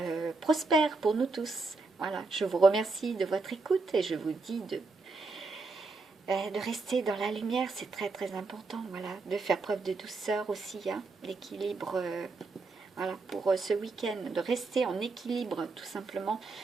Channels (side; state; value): left; quieter; 3.8 dB